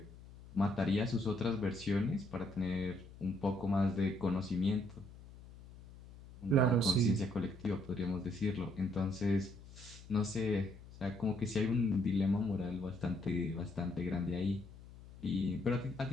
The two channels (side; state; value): left; noise; hum, 18 dB below the sound